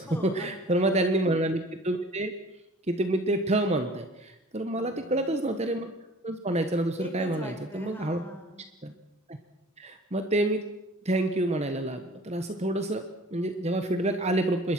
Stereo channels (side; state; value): both; normal; correlation 0.48